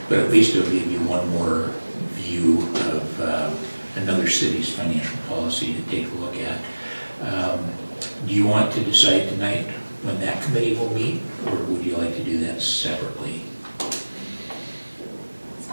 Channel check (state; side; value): inverted; both; correlation -1.00